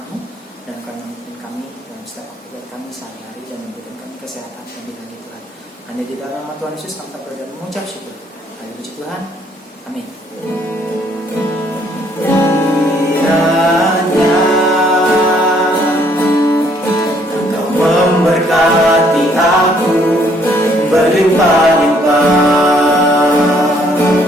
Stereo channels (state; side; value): normal; both; correlation 0.65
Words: dan kami memimpin kami dalam setiap aktivitas kami sehari-hari dan memberikan kami kesehatan dan lagi Tuhan. Hanya di dalam nama Tuhan Yesus kami berdoa dan mengucap syukur. Hanya puji Tuhan. Amin. Kiranya Engkau memberkati aku berlimpah-limpah